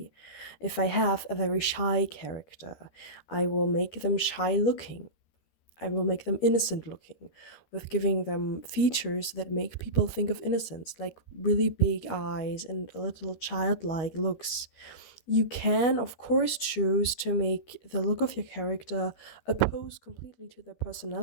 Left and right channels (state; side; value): late; right; 12 ms